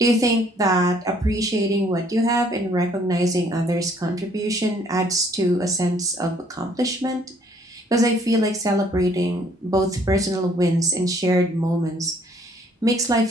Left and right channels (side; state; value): both; normal; correlation 0.62